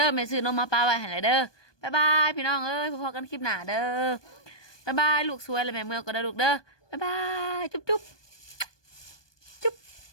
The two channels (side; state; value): right; late; 1.2 ms